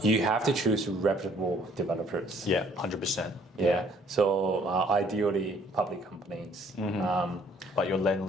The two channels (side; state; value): both; normal; correlation 0.61